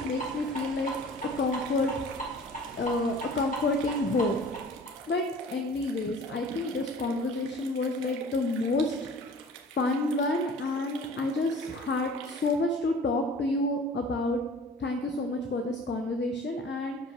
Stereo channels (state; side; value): normal; both; correlation 0.46